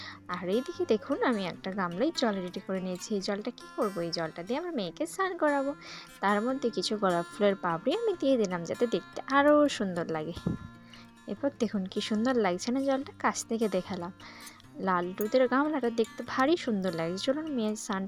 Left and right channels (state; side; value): identical; both; correlation 1.00